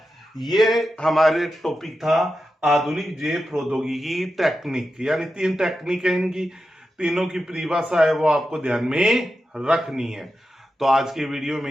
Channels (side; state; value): both; normal; correlation 0.90